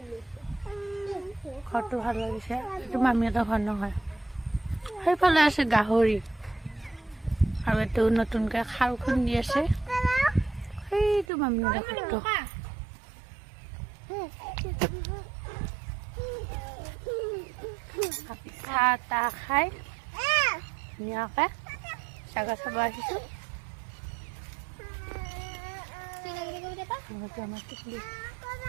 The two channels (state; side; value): drops out; left; at 11.2 s